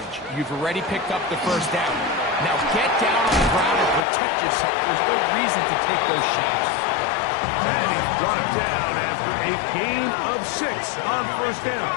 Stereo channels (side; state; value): right; drops out; at 4.0 s